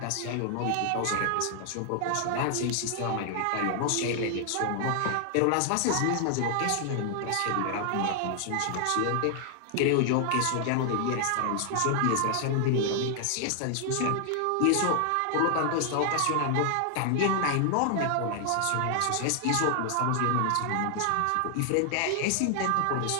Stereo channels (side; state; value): both; different; correlation 0.00